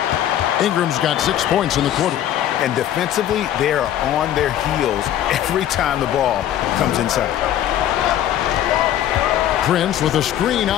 Ingram's got 6 points in the quarter. And defensively, they are on their heels every time the ball comes inside. Prince with a screen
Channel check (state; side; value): quieter; right; 11.5 dB